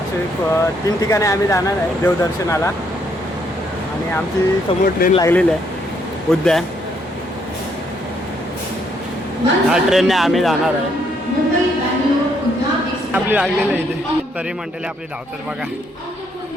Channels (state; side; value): normal; both; correlation 0.72